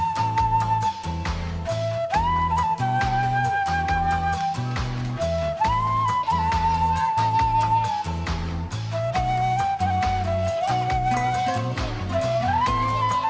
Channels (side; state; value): both; identical; correlation 1.00